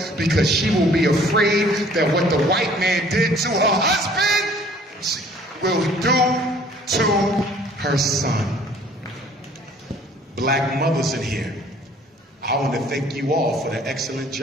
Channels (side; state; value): both; normal; correlation 0.55